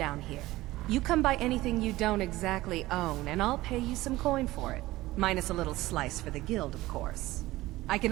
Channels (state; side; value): quieter; left; 17.8 dB